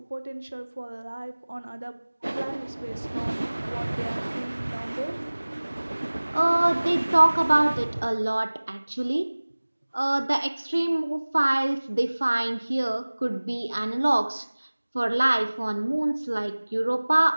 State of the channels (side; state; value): both; inverted; correlation -1.00